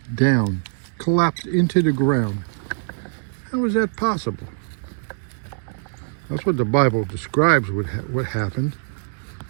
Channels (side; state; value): left; silent; digital silence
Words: down, collapsed into the ground. How is that possible? That's what the Bible describes what happened.